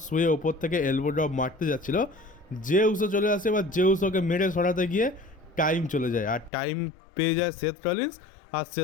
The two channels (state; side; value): drops out; right; at 6.5 s